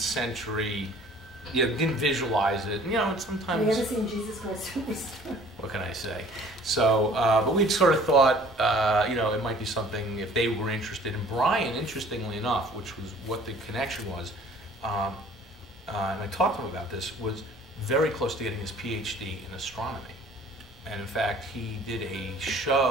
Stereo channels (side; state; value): both; normal; correlation 0.52